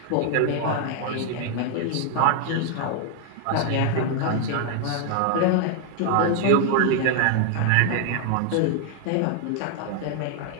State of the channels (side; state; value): both; different; correlation 0.00